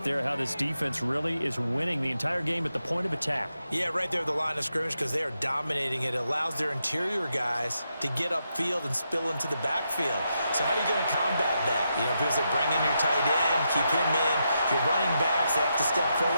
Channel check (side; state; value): both; inverted; correlation -0.84